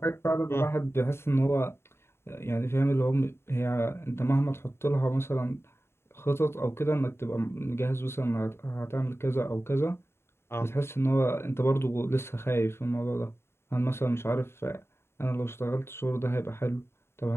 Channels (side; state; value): right; late; 0.12 ms